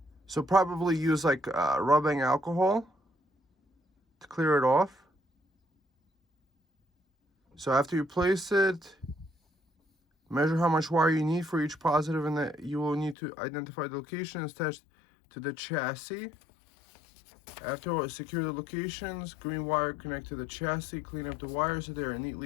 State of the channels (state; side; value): drops out; right; at 13.2 s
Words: So probably use like rubbing alcohol to clear it off. So after you place it, measure how much wire you need for each positive, and that you will need to identify the location attached to the chassis. After secure the locations, green wire connect to the chassis, clean up the wires so they are